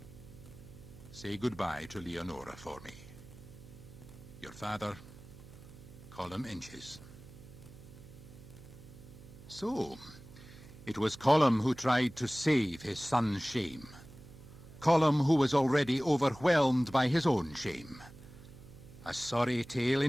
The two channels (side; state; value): right; noise; hum, 18 dB below the sound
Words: Say goodbye to Leonora for me. Your father, Colum Inches. So, it was Colum who tried to save his son's shame. Colum who was already overwhelmed by his own shame. A sorry tale